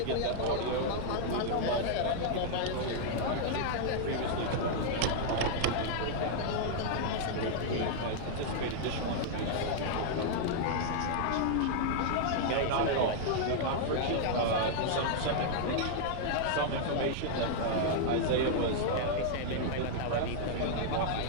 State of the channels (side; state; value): both; different; correlation -0.01